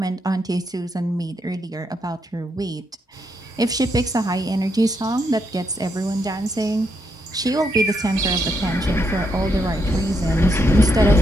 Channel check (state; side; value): normal; both; correlation 0.79